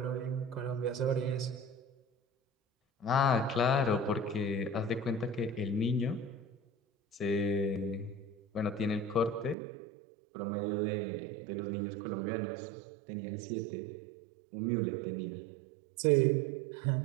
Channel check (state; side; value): drops out; left; at 9.6 s